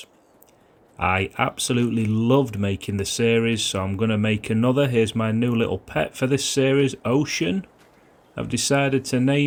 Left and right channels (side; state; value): both; identical; correlation 1.00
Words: I absolutely loved making the series, so I'm going to make another. Here's my new little pet for this series, Ocean. I've decided to